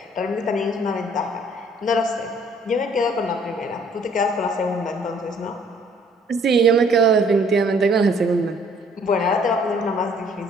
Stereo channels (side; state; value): both; normal; correlation 0.59